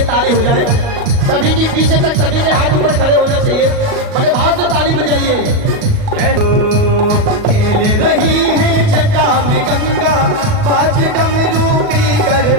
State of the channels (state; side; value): late; left; 38 ms